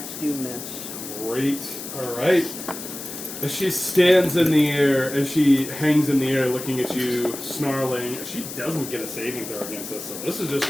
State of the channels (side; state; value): left; noise; hiss, 10 dB below the sound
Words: do miss. Great. All right. As she stands in the air, as she hangs in the air looking at you, snarling, she doesn't get a saving throw against us, so this is just